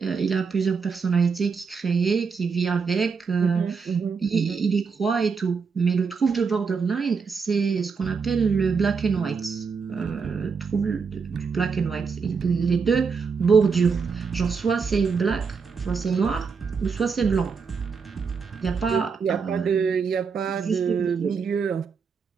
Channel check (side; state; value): left; quieter; 5.5 dB